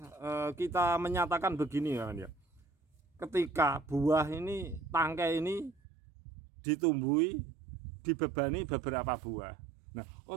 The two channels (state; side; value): drops out; left; at 5.8 s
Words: kita menyatakan begini, kawan ya. Ketika buah ini, tangkai ini ditumbuhi, dibebani beberapa buah. Nah,